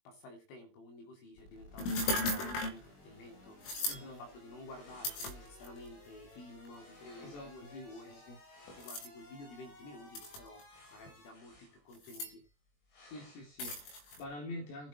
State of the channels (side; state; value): right; late; 21 ms